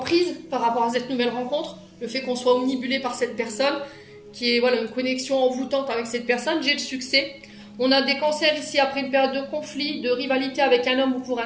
par rapport à cette nouvelle rencontre. Le fait qu'on soit omnibulé par cette personne, qui est voilà, une connexion envoûtante avec cette personne, j'ai le succès. On a des cancers ici après une période de conflit, de rivalité avec un homme ou pour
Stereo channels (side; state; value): both; identical; correlation 1.00